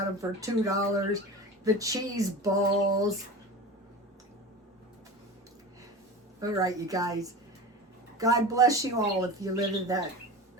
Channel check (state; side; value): normal; both; correlation 0.31